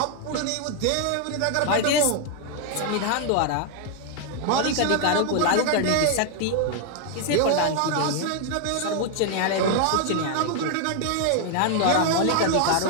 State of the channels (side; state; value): both; different; correlation 0.00